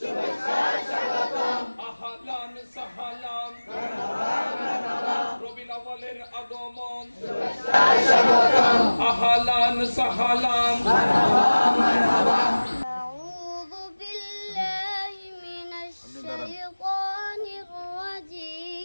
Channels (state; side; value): inverted; both; correlation -1.00